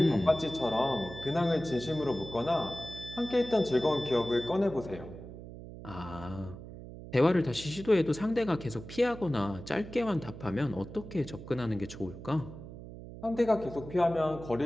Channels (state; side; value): noise; right; hum, 13 dB below the sound